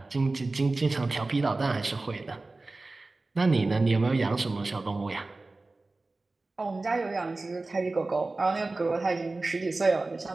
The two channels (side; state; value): left; quieter; 3.3 dB